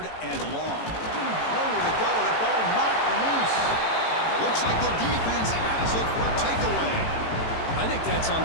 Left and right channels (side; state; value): right; late; 18 ms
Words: and long. No nowhere to go. The ball knocked loose. Looks like the defense has it for a takeaway. I think that's on